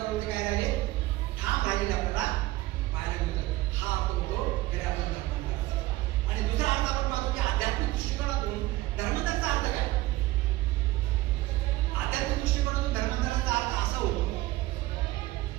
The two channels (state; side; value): quieter; left; 18.1 dB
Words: काय राहिले, ठाम राहिलेले आपल्याला पाहायला मिळतं. हा आपण तो खऱ्या अर्थाने धर्मांतराचा. आणि दुसरा अर्थ आपण पाहतो की आध्यात्मिक दृष्टिकोनातून धर्मांतराचा अर्थ काय. आध्यात्मिक दृष्टिकोनातून धर्मांतराचा अर्थ असा होतो